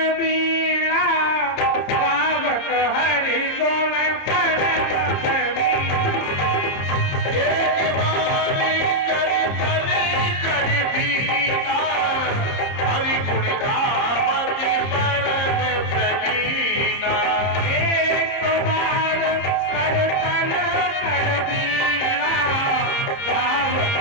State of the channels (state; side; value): late; right; 30 ms